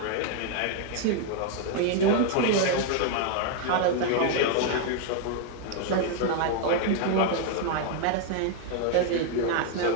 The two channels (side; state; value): both; different; correlation 0.00